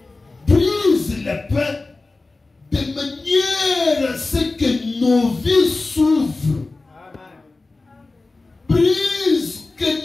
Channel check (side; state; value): right; quieter; 3.4 dB